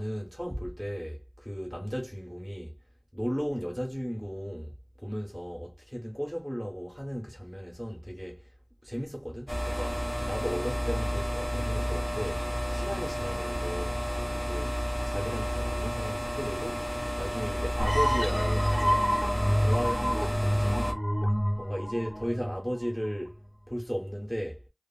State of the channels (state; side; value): identical; both; correlation 1.00